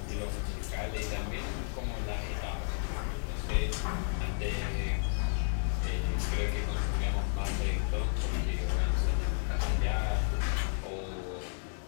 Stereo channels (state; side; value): silent; right; digital silence